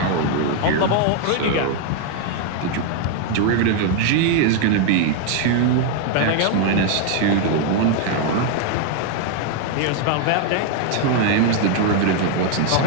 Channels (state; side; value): different; both; correlation 0.01